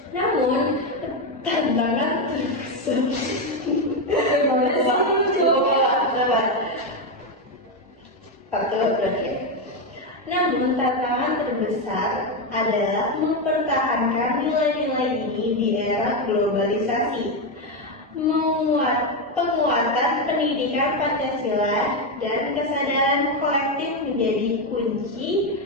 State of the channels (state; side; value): normal; both; correlation 0.08